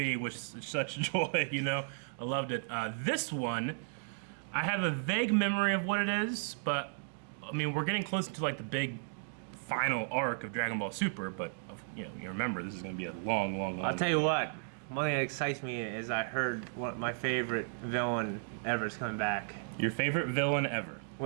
with such joy, you know? I loved it. This one, I have a vague memory of what it is, but, I mean, we're getting close to, like, the big final arc of Dragon Ball Super, but, you know, you remember, this is going to be a long I'll tell you what. One thing that excites me is I heard my favorite villain ever is coming back. Your favorite villain ever?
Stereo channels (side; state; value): left; silent; digital silence